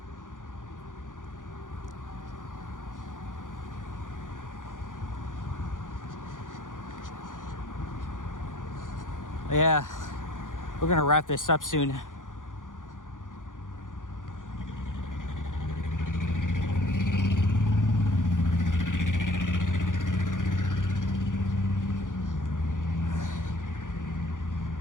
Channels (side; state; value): right; late; 0.88 ms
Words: Yeah, we're gonna wrap this up soon.